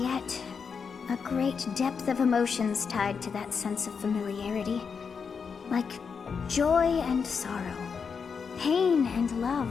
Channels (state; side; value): quieter; right; 6.0 dB